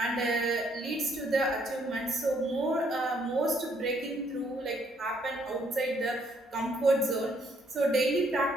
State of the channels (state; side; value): normal; both; correlation 0.69